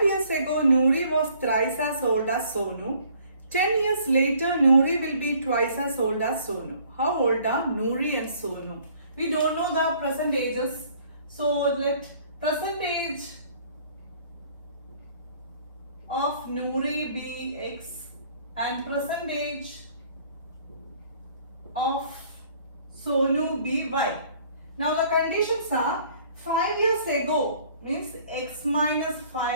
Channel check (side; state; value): both; inverted; correlation -0.58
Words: years ago, Noori was thrice as old as Sonu. 10 years later, Noori will be twice as old as Sonu. How old are Noori and Sonu? We don't know the present ages, so let present age of Noori be x and present age of Sonu be y. Now the conditions are 5 years ago means x minus